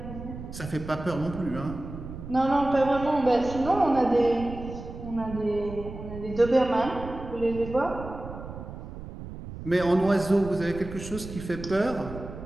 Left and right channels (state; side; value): noise; right; rumble, 11 dB below the sound